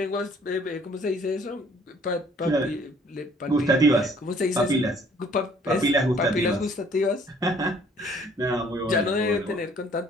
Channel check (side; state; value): both; normal; correlation 0.59